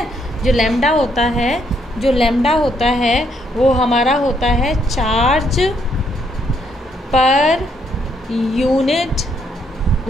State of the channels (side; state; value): both; normal; correlation 0.72